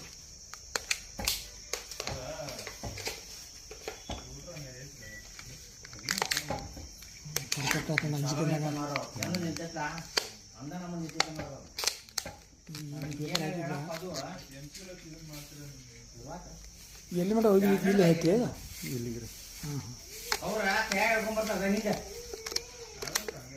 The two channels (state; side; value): identical; both; correlation 1.00